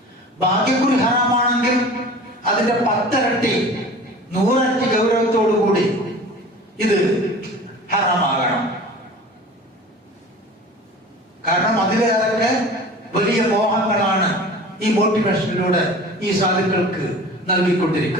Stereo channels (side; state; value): both; normal; correlation 0.40